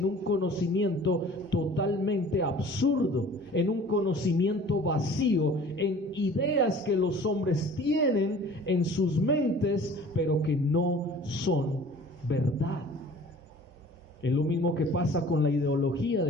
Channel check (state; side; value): normal; both; correlation 0.47